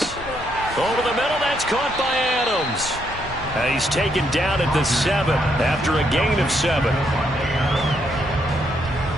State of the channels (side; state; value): both; normal; correlation 0.75